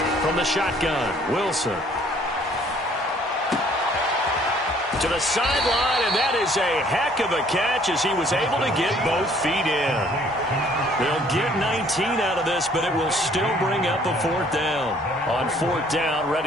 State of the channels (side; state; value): both; normal; correlation 0.59